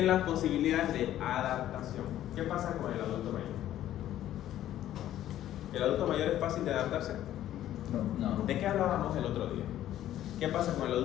las posibilidades de adaptación. ¿Qué pasa con el adulto mayor? ¿El adulto mayor es fácil de adaptarse? No. ¿De qué hablábamos el otro día? ¿Qué pasa con el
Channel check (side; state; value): right; quieter; 12.5 dB